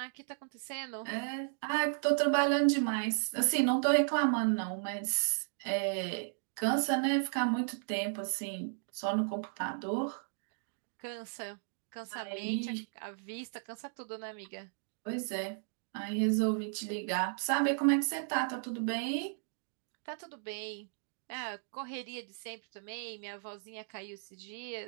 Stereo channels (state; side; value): silent; left; digital silence